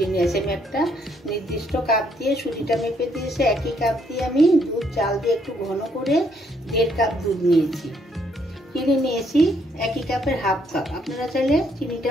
নিয়েছি। আমি একটা নির্দিষ্ট কাপ দিয়ে সুজিটা মেপে দিয়েছি। একই কাপ দিয়ে আমি দুধ চাল দিয়ে একটু ঘন করে 1.5 কাপ দুধ নিয়েছি। চিনি নিয়েছি একই কাপের হাফ কাপ। আপনারা চাইলে চিনিটা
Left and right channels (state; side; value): normal; both; correlation 0.71